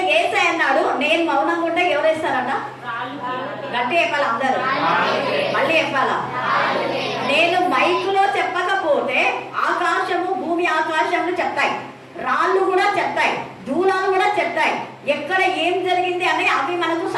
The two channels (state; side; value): identical; both; correlation 1.00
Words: యేసయ్య అన్నాడు, నేను మౌనంగా ఉంటే ఎవరు వేస్తారట? గట్టి చెప్పాలా అందరూ? మళ్ళీ చెప్పాలా? నేను మైకులో చెప్పకపోతే ఆకాశము భూమి ఆకాశములు చెప్తాయి, రాళ్ళు కూడా చెప్తాయి, దూలాలు కూడా చెప్తాయి. ఎక్కడ ఏం జరిగింది అని అవి మనకు